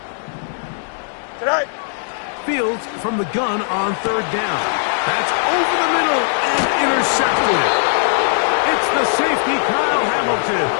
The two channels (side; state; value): right; silent; digital silence